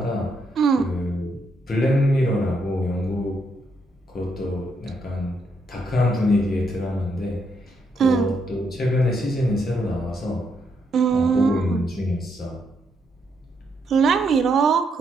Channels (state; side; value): normal; both; correlation 0.77